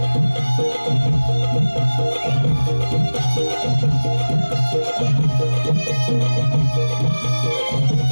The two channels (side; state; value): both; inverted; correlation -1.00